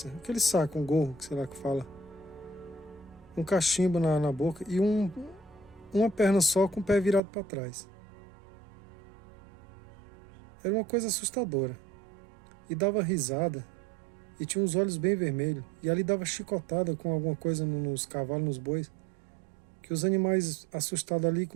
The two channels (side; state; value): left; drops out; at 7.2 s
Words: aquele saco, um gorro, sei lá que fala, um cachimbo na boca e uma perna só com o pé virado para trás. Era uma coisa assustadora. E dava risada e tinha os olhos bem vermelhos. E ali dava chicotada com alguma coisa nos cavalos, nos bois, que os animais assustados ali